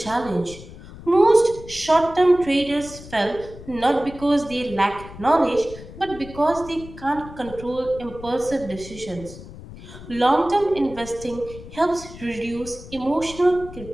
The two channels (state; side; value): noise; left; rumble, 15 dB below the sound